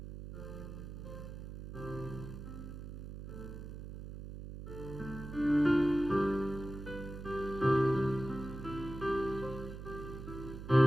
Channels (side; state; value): right; noise; hum, 10 dB below the sound